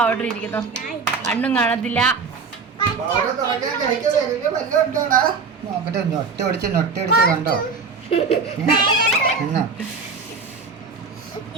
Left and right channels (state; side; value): quieter; left; 4.9 dB